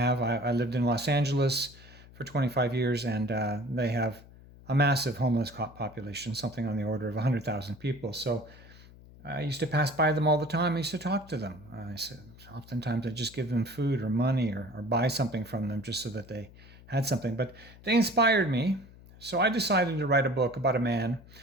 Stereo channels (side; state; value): left; noise; hum, 21 dB below the sound